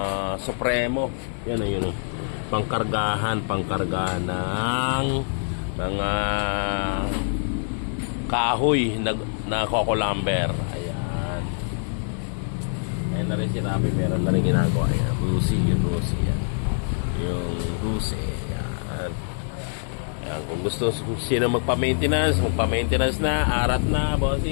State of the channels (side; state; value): right; silent; digital silence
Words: Supremo. Yan o, yun o. Pangkargahan ng mga kahoy na coco lumber. Ayan. Ayan na rin si Rabi. Meron na rin ginagawa. Ayan. Rusi. Yan. Yung Rusi. Ayan. Ayan. Kung gusto sino magpa-maintenance na. Arat na,